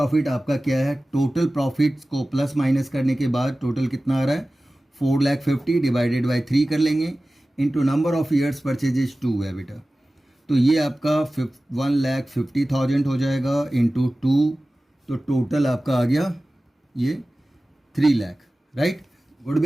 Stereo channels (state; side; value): normal; both; correlation 0.96